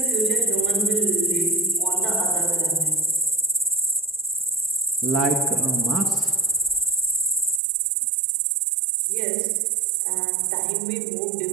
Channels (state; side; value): drops out; left; at 7.6 s